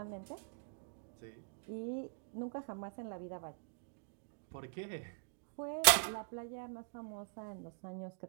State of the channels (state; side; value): silent; left; digital silence